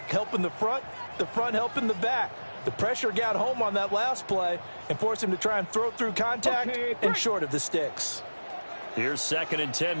helping the front helping the back. The pressure got home on that last play and forced him to try and throw through contact and short of the sticks. Here's 2nd and 10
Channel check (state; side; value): inverted; both; correlation -1.00